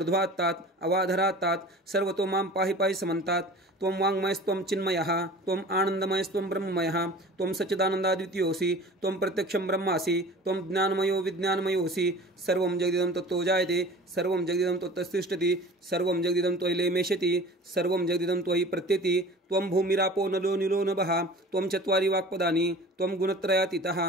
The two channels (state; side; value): normal; both; correlation 0.41